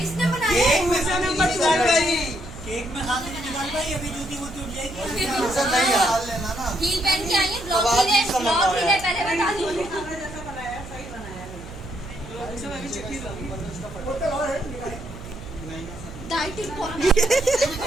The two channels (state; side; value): noise; right; hum, 14 dB below the sound